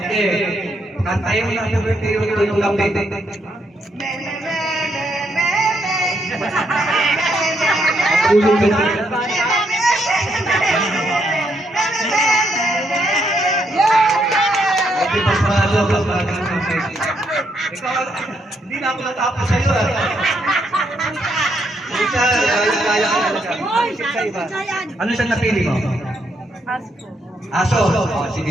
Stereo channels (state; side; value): normal; both; correlation 0.76